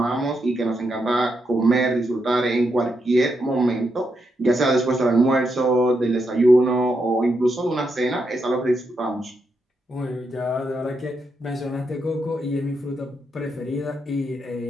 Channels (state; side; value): normal; both; correlation 0.82